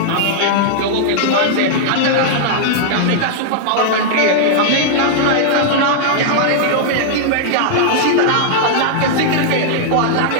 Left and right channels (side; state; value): both; different; correlation -0.01